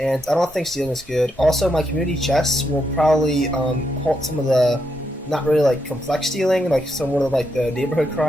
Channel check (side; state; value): both; normal; correlation 0.81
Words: I don't think stealing is good. Also, my community chests will probably halt some of the not really complex stealing, some of the neighborhood